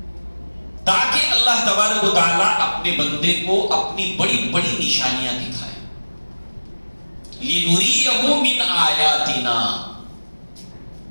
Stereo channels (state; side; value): inverted; both; correlation -1.00